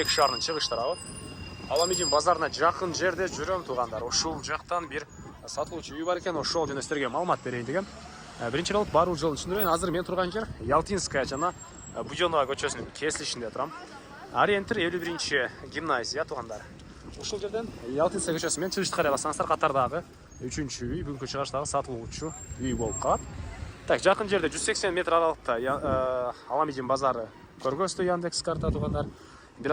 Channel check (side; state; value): both; identical; correlation 1.00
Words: шаарынын чыгыштары. Аламедин базарына жақын жерде жүрөм туғандар. Ошол жақтан бир сатылуучу үй бар экен, ошол жөнүндө силерге маалымат берейин дегем. Биринчи болуп баруу жолун түшүндүрөйүн. Азыр мен турган жер Ялтинская жана Будёнова көчөсүнүн кесилишинде турам. Ориентир 51 гимназия туғандар. Ушул жерден Ялтинская көчөсү менен чыгышты карай алсаңыздар, катардагы 3-чү үй, бүгүнкү чыгыштагы сатылуучу үй болуп калат. Так, жакын жерде 180 метр аралыкта Аламедин базары көргөзтү Яндекс карта тугандар. Бир